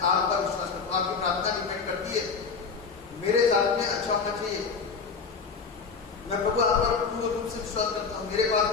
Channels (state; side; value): quieter; right; 5.2 dB